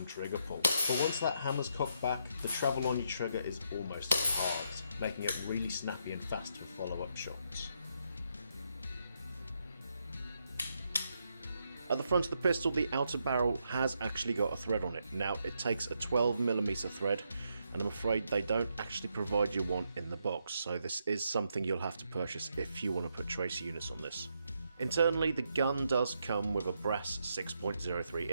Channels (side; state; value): both; inverted; correlation -0.79